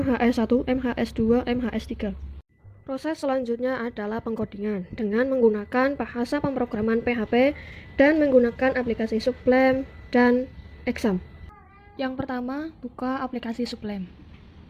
MHS2, MHS3. Proses selanjutnya adalah pengkodingan dengan menggunakan bahasa pemrograman PHP dan menggunakan aplikasi Sublime dan Exam. Yang pertama, buka aplikasi Sublime.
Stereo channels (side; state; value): both; identical; correlation 1.00